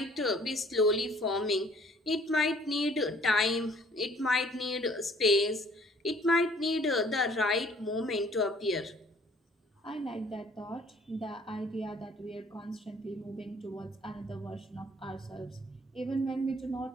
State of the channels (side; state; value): both; normal; correlation 0.57